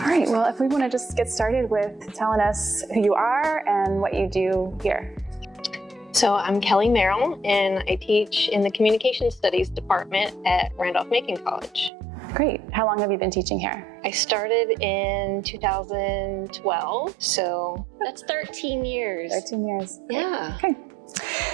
right, well, if we want to just get started with telling us who you are and what you do here. So I'm Kelly Merrill, and I teach in the Communication Studies department at Randolph-Macon College. Great. How long have you been teaching here? I started in 2012, so that's 13 years. 13 years. Yeah. Okay.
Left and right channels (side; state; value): left; drops out; at 11.9 s